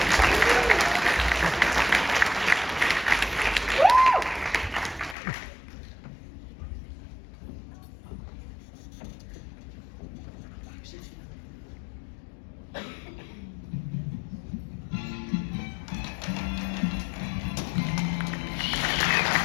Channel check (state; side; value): drops out; right; at 5.2 s